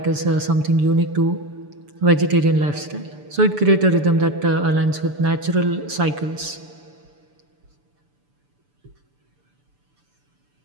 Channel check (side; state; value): left; late; 6.9 ms